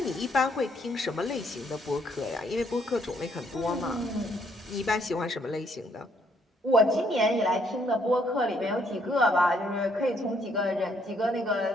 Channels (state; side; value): normal; both; correlation 0.69